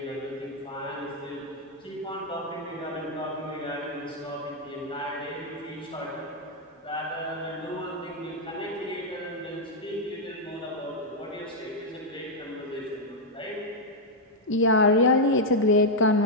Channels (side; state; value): both; normal; correlation -0.01